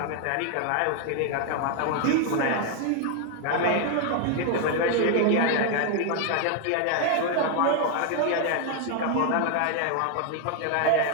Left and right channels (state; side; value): different; both; correlation 0.00